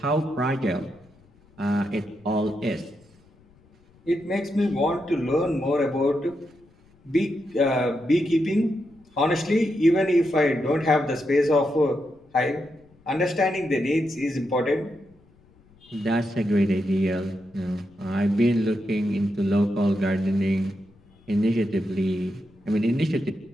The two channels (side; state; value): left; noise; rumble, 30 dB below the sound